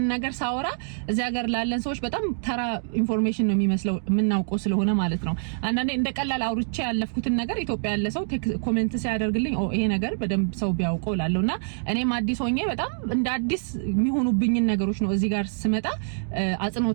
ነገር ሳወራ እዚህ ሀገር ላለን ሰዎች በጣም ተራ ኢንፎርሜሽን ነው የሚመስለው የምናውቀው ስለሆነ ማለት ነው። አንዳንዴ እንደ ቀላል አውርቼ ያለፍኩትን ነገር ኢትዮጵያ ያለ ሰው ኮሜንት ሲያደርግልኝ ይሄ ነገር በደንብ ሰው ቢያውቀው ላለውና እኔም አዲስ ሆኜ በጣም እንደ አዲስ የሚሆኑብኝ ነገሮች ነው እዚህ ጋር ስመጣ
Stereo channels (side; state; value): left; silent; digital silence